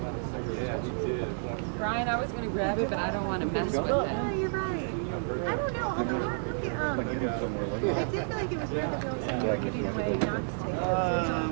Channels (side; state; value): left; silent; 58 dB below the other